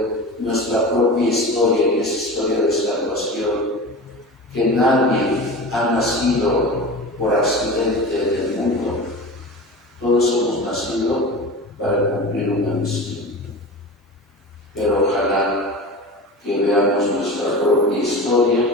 nuestra propia historia, que es historia de salvación, que nadie ha nacido por accidente en el mundo, todos hemos nacido para cumplir una misión. Pero ojalá que veamos nuestra propia historia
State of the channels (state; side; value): normal; both; correlation 0.31